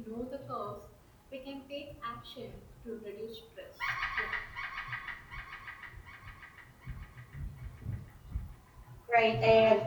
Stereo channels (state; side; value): identical; both; correlation 1.00